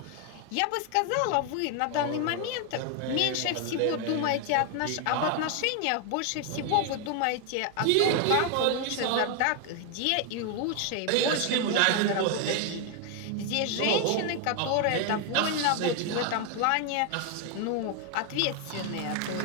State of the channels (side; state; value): both; different; correlation 0.01